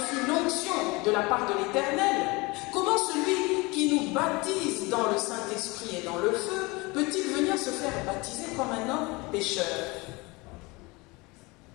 l'onction de la part de l'Éternel, comment celui qui nous baptise dans le Saint-Esprit et dans le feu, peut-il venir se faire baptiser comme un homme pécheur?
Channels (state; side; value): quieter; right; 24.9 dB